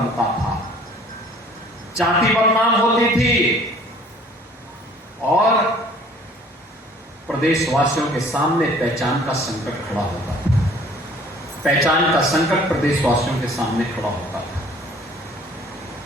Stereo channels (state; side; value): normal; both; correlation 0.53